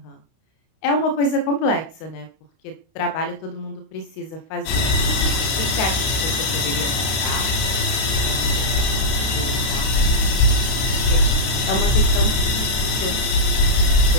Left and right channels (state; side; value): late; right; 32 ms